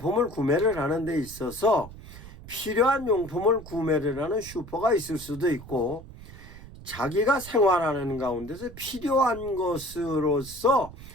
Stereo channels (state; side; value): noise; right; rumble, 16 dB below the sound